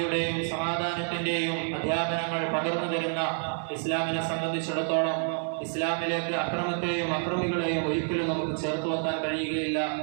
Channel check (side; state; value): left; silent; digital silence